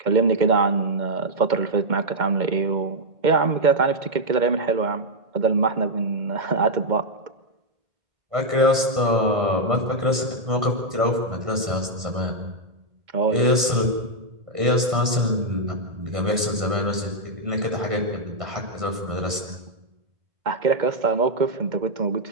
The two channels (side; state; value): left; late; 1.5 ms